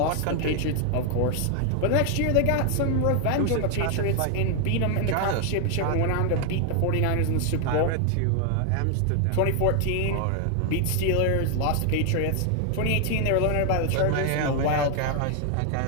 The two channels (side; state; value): both; different; correlation 0.00